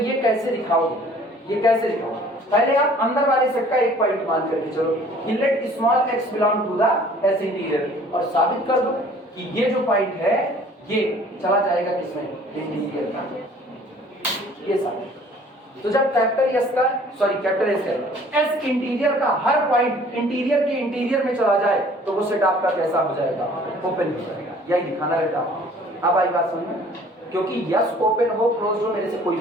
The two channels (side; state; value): both; normal; correlation 0.53